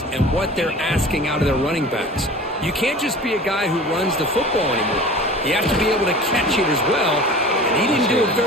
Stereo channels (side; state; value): both; normal; correlation 0.40